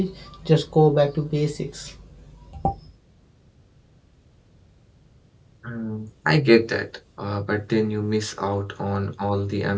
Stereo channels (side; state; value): both; identical; correlation 1.00